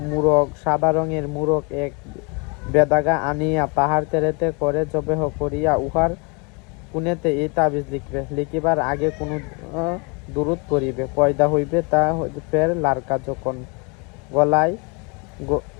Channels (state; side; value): quieter; right; 31.0 dB